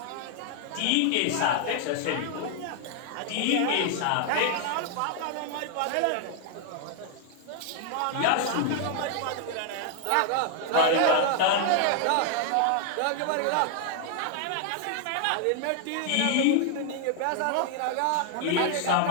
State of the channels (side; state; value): both; different; correlation 0.00